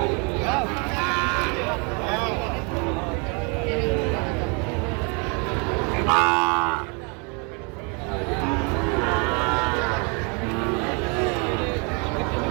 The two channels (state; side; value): quieter; left; 33.7 dB